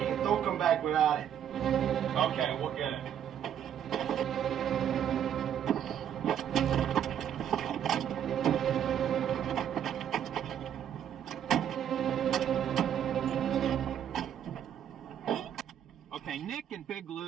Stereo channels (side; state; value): left; quieter; 9.5 dB